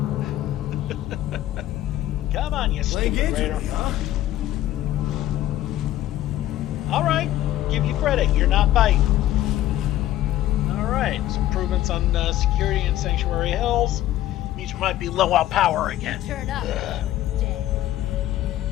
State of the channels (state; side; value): quieter; right; 13.8 dB